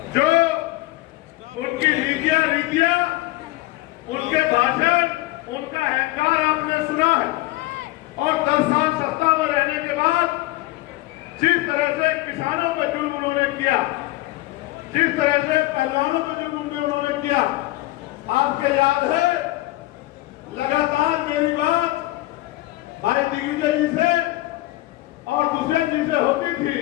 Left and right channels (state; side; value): quieter; right; 18.6 dB